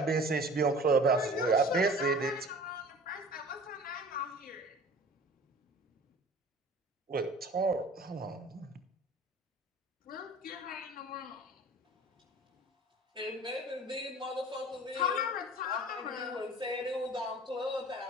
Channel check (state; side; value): normal; both; correlation 0.43